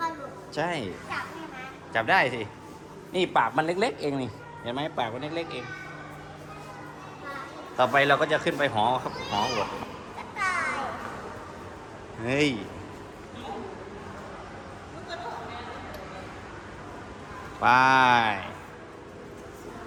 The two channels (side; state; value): both; identical; correlation 1.00